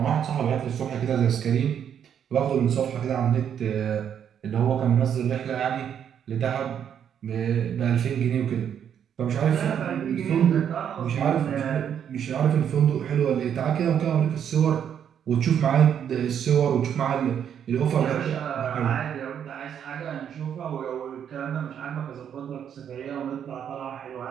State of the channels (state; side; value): quieter; left; 8.7 dB